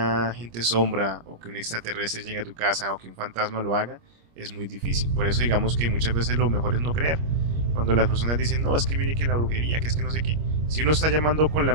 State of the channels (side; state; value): left; late; 25 ms